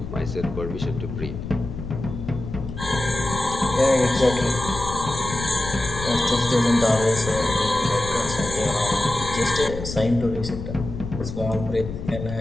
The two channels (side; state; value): left; noise; rumble, 8 dB below the sound